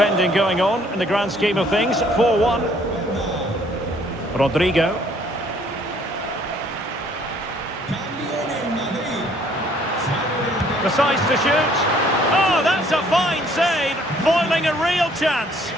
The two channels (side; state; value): both; normal; correlation 0.61